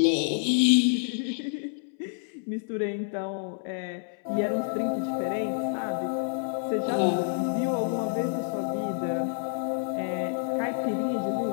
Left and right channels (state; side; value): silent; right; 59 dB below the other